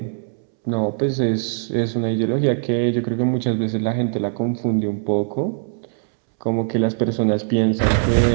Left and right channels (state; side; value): silent; left; 65 dB below the other